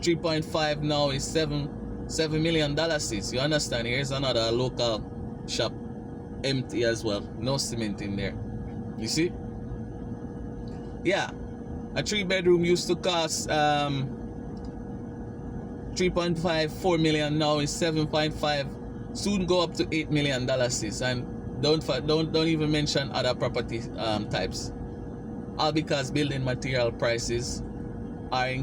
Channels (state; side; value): identical; both; correlation 1.00